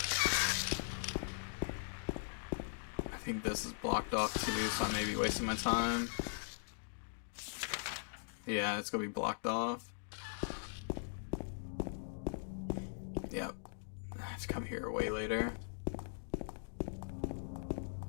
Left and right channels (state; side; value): silent; right; digital silence